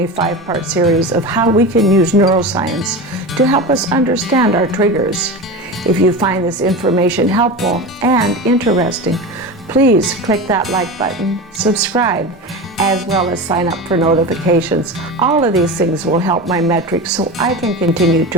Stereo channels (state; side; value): normal; both; correlation 0.26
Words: 5-part series of how we can use neuroscience to help us understand our triggers. If you find this information helpful and interesting, please click that like button, subscribe, as well as sign up for notifications. All of these things will help my metrics so I can continue